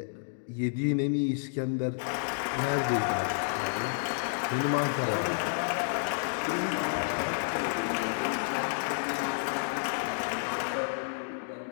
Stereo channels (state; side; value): silent; right; digital silence